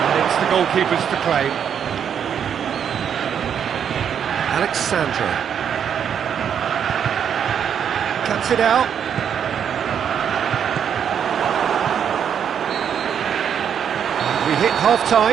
And it's the goalkeepers to claim. Alexandro. Cuts it out. We hit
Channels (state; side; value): quieter; left; 8.2 dB